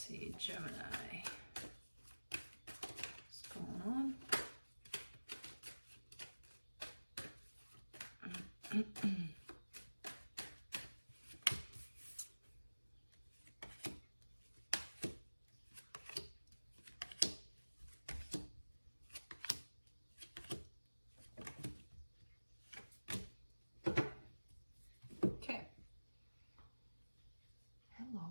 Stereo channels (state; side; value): inverted; both; correlation -1.00